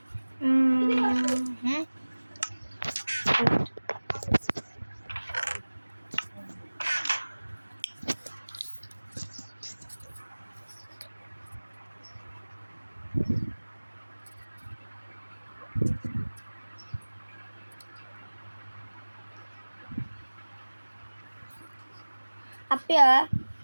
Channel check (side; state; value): both; inverted; correlation -1.00